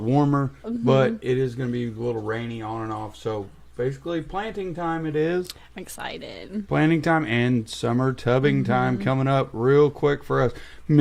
warmer, but it is going to be a little rainy on and off. So basically planting time it is. I'm excited. Planting time and summer tubbing time coming up real quick for us.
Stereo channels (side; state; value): both; identical; correlation 1.00